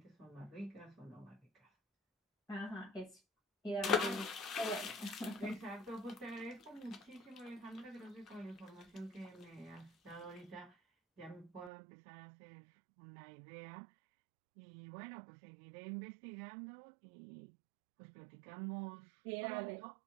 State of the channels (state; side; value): drops out; left; at 11.7 s